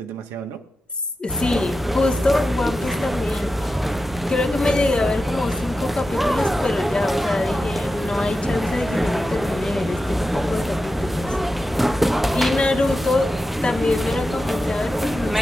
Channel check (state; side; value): normal; both; correlation 0.91